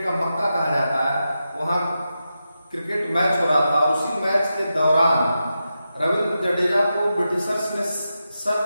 का मक्का कहा जाता है, वहां क्रिकेट मैच हो रहा था, और उसी मैच के दौरान रविंद्र जडेजा को ब्रिटिशर्स ने सर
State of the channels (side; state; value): both; inverted; correlation -0.89